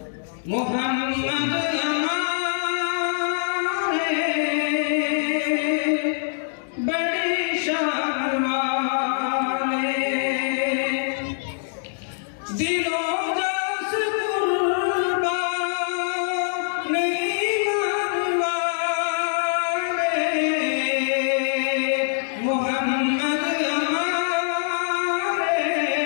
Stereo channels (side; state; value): right; silent; digital silence